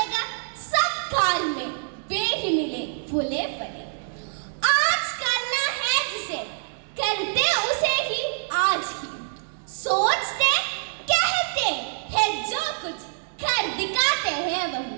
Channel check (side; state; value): left; silent; digital silence